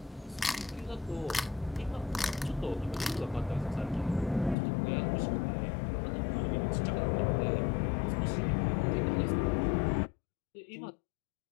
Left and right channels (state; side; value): drops out; right; at 4.5 s